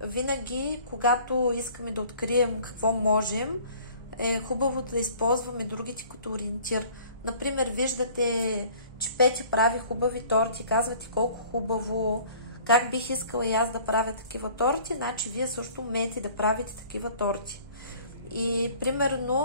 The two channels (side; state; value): both; inverted; correlation -0.51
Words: винаги, когато искаме да открием какво можем, е хубаво да използваме другите като ориентир. Например, виждате, че Петя прави хубави торти, казвате колко хубаво, как бих искала и аз да правя такива торти, значи вие също умеете да правите такива торти. И